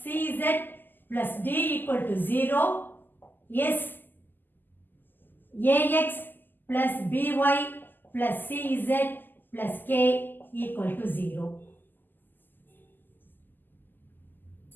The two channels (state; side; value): late; right; 0.090 ms